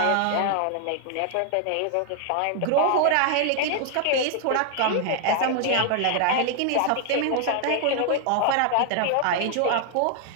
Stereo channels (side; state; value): both; different; correlation 0.00